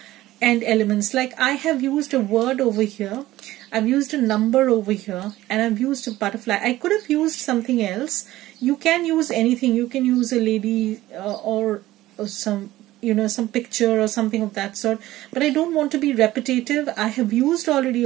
and elements. Like I have used a word over here, I've used a number over here, and I've used a butterfly. I could have used something else. You can use anything. You can use a lady or some, you know, some picture or something of that sort, but I don't want to be repetitive. I have used already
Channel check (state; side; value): quieter; left; 16.1 dB